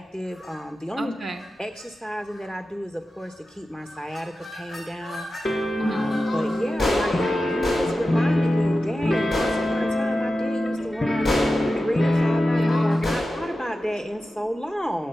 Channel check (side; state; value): both; normal; correlation 0.93